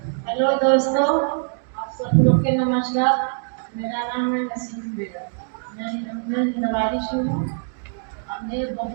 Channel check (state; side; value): silent; left; 62 dB below the other